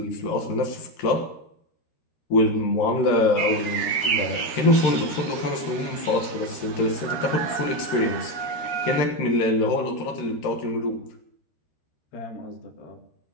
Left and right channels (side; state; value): right; late; 13 ms